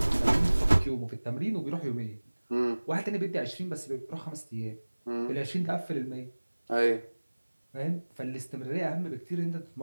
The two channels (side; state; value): both; inverted; correlation -1.00